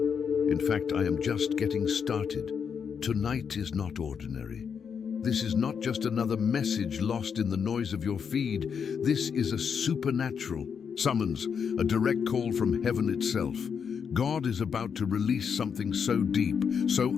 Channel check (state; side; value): quieter; right; 6.8 dB